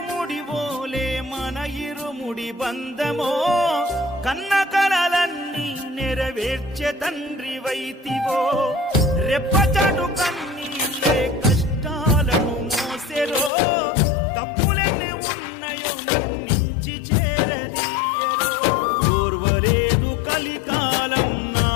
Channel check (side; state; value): right; drops out; at 13.5 s